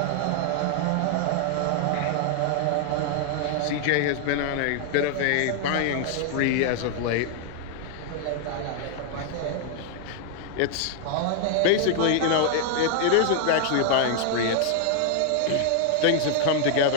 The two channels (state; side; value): different; both; correlation 0.00